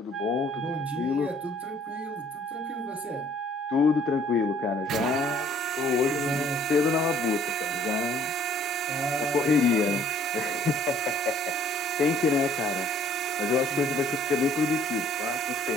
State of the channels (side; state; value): both; normal; correlation 0.59